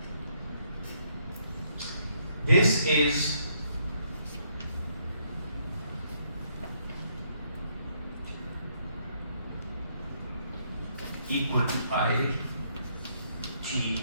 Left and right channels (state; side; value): inverted; both; correlation -0.72